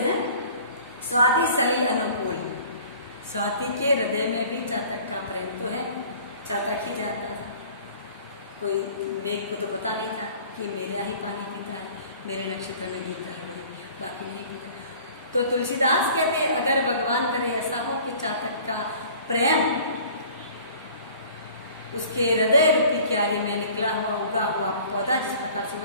हैं स्वाति सली अनुकूल, स्वाति के हृदय में भी चातक का प्रेम तो है, चातक ही जानता था, कोई मेघ को तो पता नहीं था कि मेरे यहाँ ही पानी पीता है, मेरे नक्षत्र में गिरता है, बाकी नहीं पीता। तो तुलसीदास कहते अगर भगवान करे ऐसा हो कि चातक का प्रेम उसके हृदय रूपी क्यारी में निकला हुआ उगा हुआ पौधा जिस प्रकार से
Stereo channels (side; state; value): both; inverted; correlation -0.49